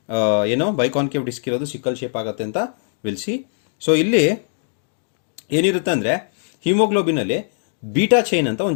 ಏನೋ ಬೈಕಾನ್ಕೇವ್ ಡಿಸ್ಕ್ ಇರೋದು ಸಿಕ್ಕಲ್ ಶೇಪ್ ಆಗುತ್ತೆ ಅಂತ ವಿಲ್ಸಿ. ಸೊ ಇಲ್ಲಿ ಏನಿರುತ್ತೆ ಅಂದರೆ ಹಿಮೋಗ್ಲೋಬಿನಲ್ಲಿ ಬೀಟಾ ಚೈನ್ ಅಂತ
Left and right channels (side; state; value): right; silent; digital silence